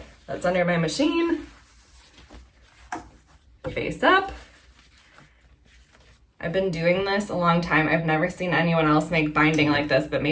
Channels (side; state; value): both; identical; correlation 1.00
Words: that's under my machine, face up. I've been doing this a long time. I've never seen anyone else make binding like this, but